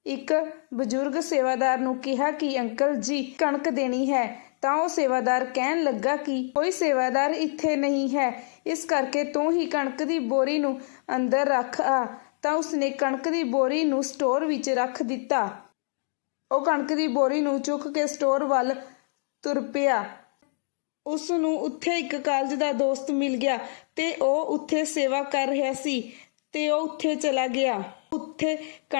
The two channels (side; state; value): right; silent; 61 dB below the other